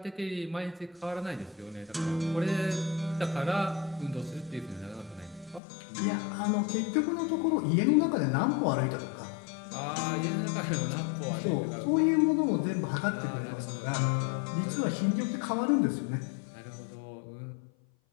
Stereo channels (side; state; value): right; drops out; at 5.6 s